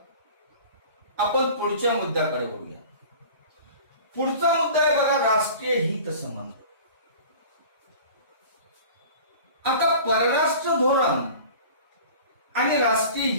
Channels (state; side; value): inverted; both; correlation -0.42